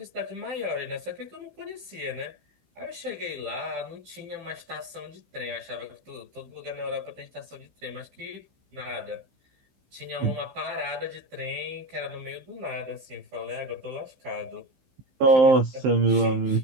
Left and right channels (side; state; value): left; late; 15 ms